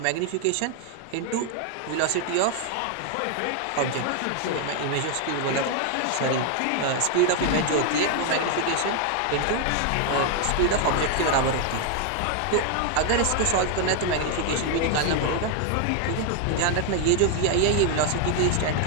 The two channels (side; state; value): both; different; correlation 0.01